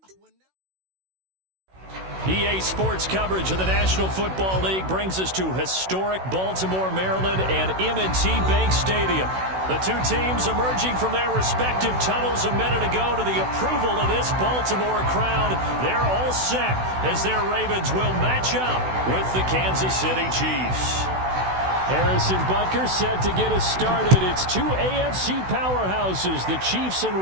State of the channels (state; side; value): late; left; 16 ms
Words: EA Sports coverage of the National Football League brings us to historic Baltimore, Maryland, and M&T Bank Stadium. The two teams emerging from their respective tunnels a minute ago to the approval of this Baltimore crowd. They're all set as their Ravens will match up with the Kansas City Chiefs. Harrison Butker set to get us started. It's two AFC powerhouses, the Chiefs